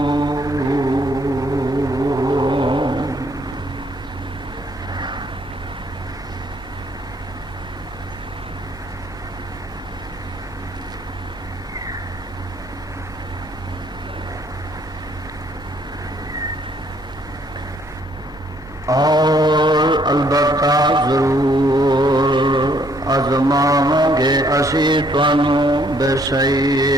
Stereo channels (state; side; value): normal; both; correlation 0.66